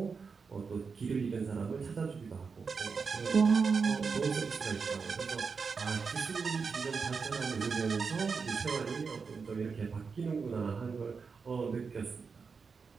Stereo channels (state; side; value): quieter; left; 5.2 dB